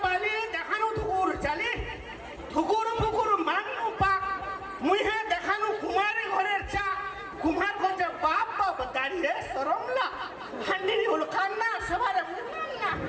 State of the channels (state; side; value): identical; both; correlation 1.00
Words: দেখানো তো ওর চালে